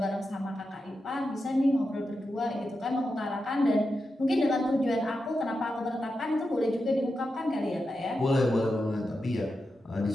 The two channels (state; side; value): normal; both; correlation 0.89